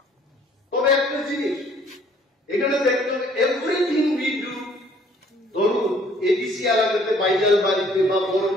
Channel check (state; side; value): normal; both; correlation 0.59